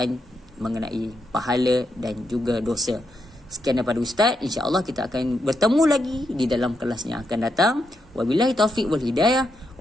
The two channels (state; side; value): normal; both; correlation 0.82